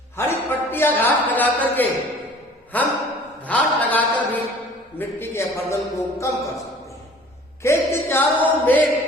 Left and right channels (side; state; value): both; normal; correlation 0.49